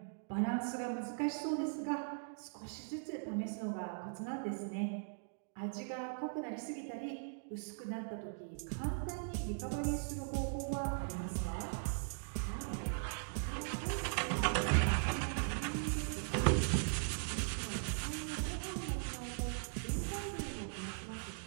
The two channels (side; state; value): left; silent; digital silence